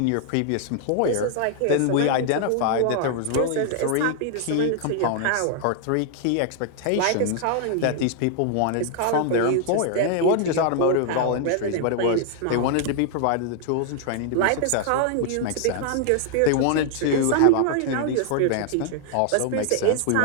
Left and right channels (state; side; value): different; both; correlation 0.00